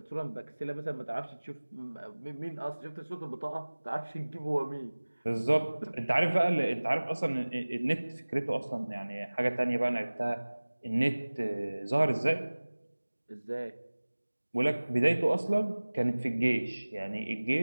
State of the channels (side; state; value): both; inverted; correlation -1.00